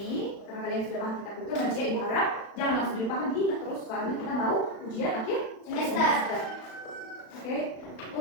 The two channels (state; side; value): late; right; 36 ms